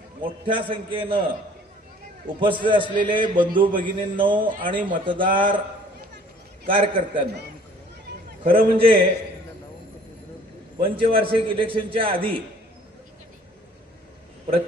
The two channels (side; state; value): both; normal; correlation 0.55